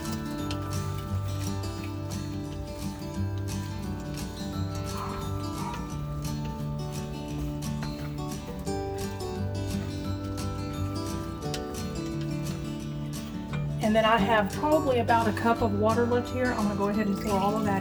And then I have probably about a cup of water left here. I'm going to go ahead and pour all of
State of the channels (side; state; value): both; identical; correlation 1.00